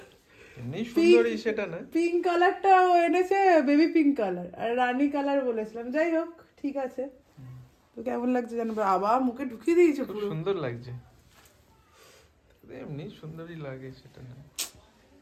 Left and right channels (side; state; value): both; identical; correlation 1.00